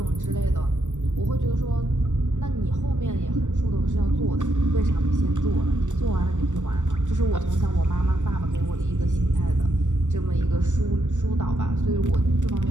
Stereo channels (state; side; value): late; left; 0.85 ms